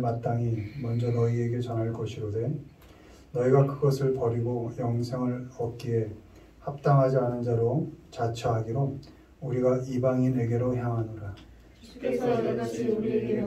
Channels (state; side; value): identical; both; correlation 1.00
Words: 먼저 너희에게 전할 것이로되 너희가 그것을 버리고 영생을 얻기에 합당하지 않은 자로 자처하기로 우리가 이방인에게로 향하노라. 주께서 이같이 우리에게